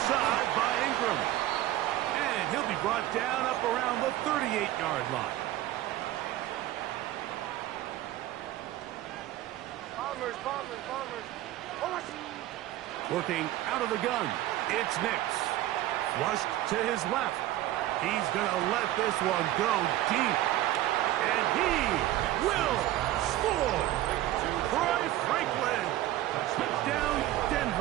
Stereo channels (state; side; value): quieter; left; 14.6 dB